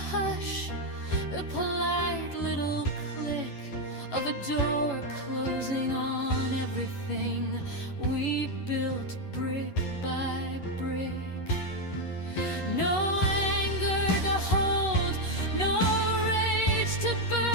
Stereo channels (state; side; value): late; right; 11 ms